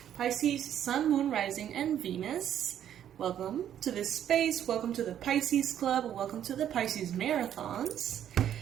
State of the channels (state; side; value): quieter; left; 10.2 dB